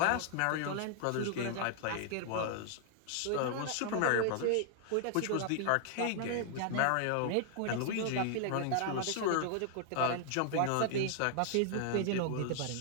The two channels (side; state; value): both; different; correlation 0.00